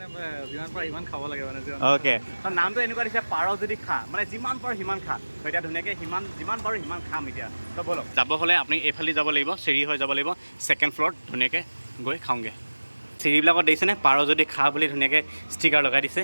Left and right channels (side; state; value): both; inverted; correlation -1.00